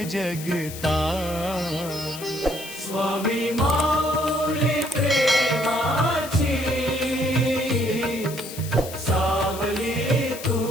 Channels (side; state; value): left; noise; hiss, 12 dB below the sound